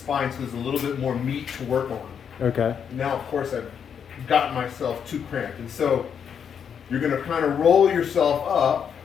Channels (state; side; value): quieter; right; 7.6 dB